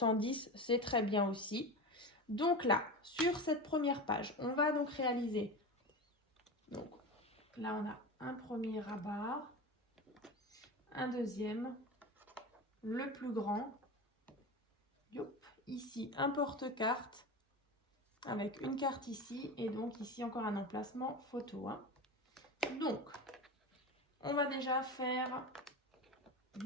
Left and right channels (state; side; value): normal; both; correlation 0.25